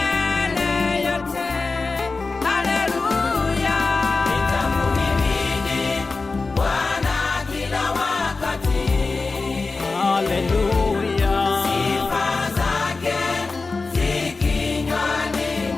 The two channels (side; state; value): right; quieter; 3.9 dB